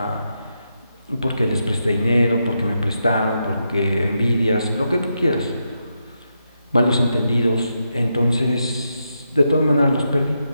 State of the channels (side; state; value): both; inverted; correlation -0.84